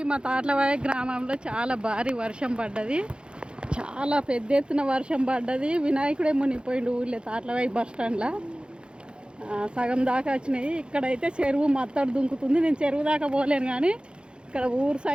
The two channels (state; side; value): late; left; 0.053 ms